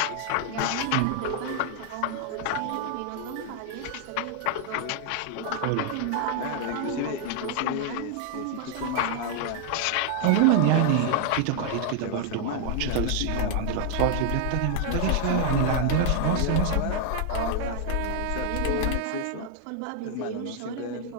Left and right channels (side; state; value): both; different; correlation 0.00